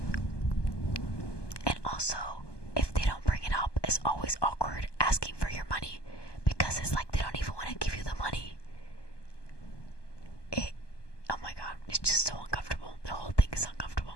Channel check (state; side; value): late; right; 1.2 ms